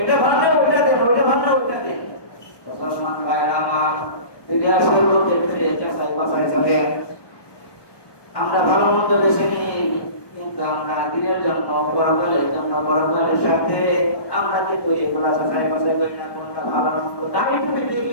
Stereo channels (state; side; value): late; right; 1.2 ms